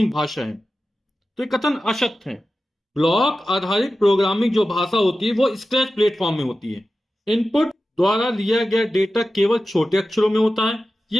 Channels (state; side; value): normal; both; correlation 0.93